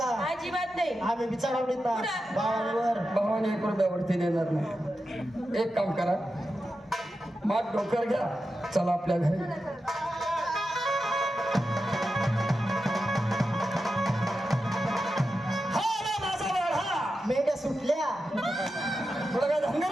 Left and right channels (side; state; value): both; normal; correlation 0.90